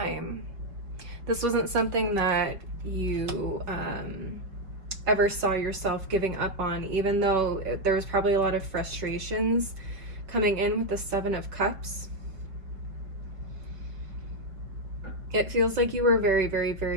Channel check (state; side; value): late; left; 5.0 ms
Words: This wasn't something that you ever saw yourself giving up on, even though there was probably a lot of frustrations coming in with the Seven of Cups. It feels like you were very, very,